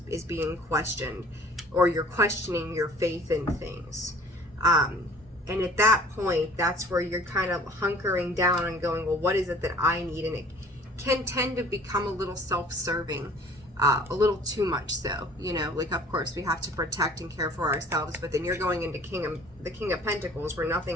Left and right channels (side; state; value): both; normal; correlation 0.50